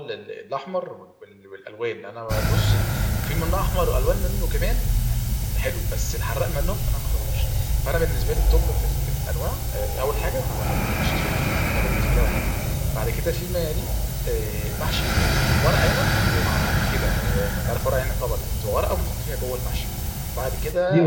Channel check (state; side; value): identical; both; correlation 1.00